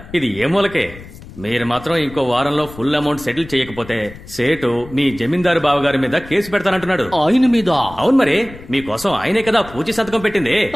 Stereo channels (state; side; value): noise; left; rumble, 17 dB below the sound